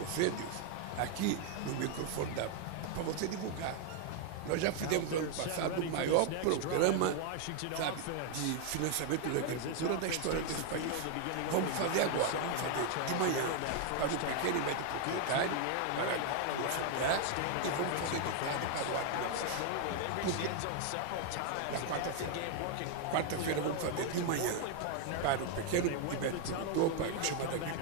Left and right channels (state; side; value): different; both; correlation 0.00